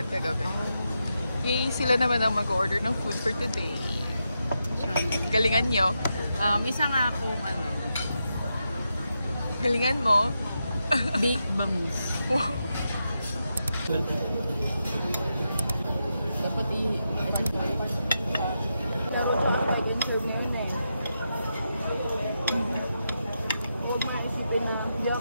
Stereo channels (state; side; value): inverted; both; correlation -0.86